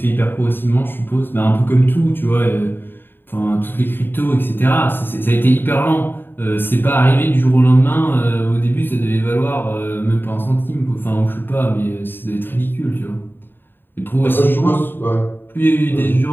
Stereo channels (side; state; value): right; late; 0.097 ms